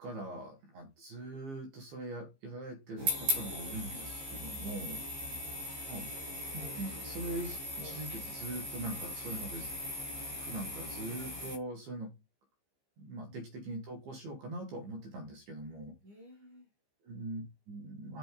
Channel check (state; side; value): late; left; 15 ms